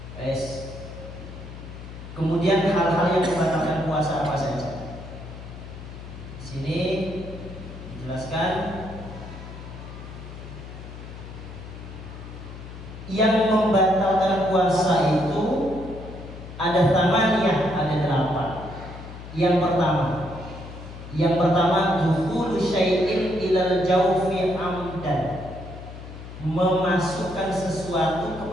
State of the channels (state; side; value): noise; left; hum, 13 dB below the sound